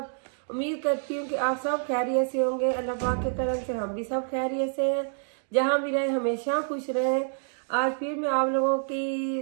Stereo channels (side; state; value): left; silent; digital silence